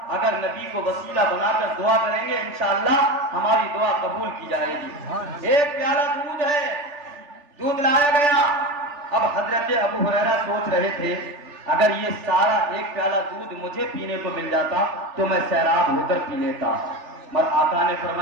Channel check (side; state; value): left; late; 3.4 ms